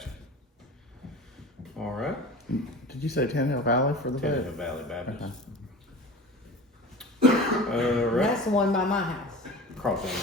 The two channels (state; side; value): normal; both; correlation 0.36